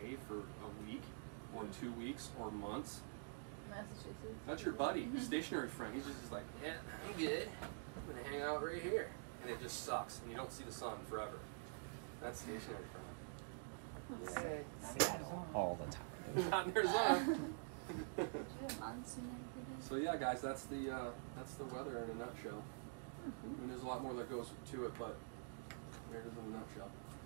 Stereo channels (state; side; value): silent; left; digital silence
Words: for a week or 2 weeks or months? Massachusetts. That's your buddy, stationary friend. He's just like, "Yeah, you good? I'm gonna hang out right here," and it just sucks, and you don't see the sun forever. That's stationary friend. Yeah, all the time. Not in Arizona. Do you have monsoon every day? So yeah, guys, that's the weather in a nutshell. I mean, there's a lot more that goes to it, but there it is in a nutshell.